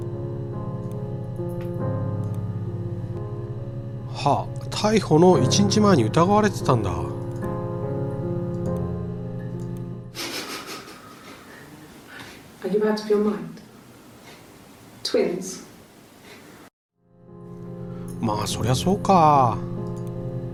はあ、逮捕の1日前に疑われてたんだ。Are you out of your mind? Twins? まあそりゃそうか。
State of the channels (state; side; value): identical; both; correlation 1.00